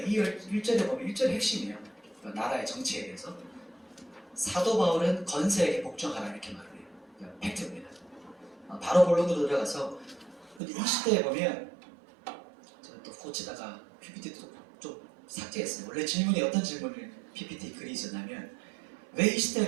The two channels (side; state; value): left; drops out; at 10.6 s